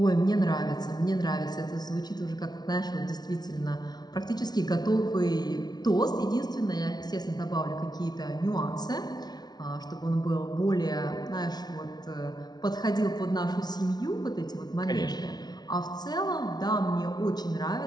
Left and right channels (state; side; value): late; right; 0.19 ms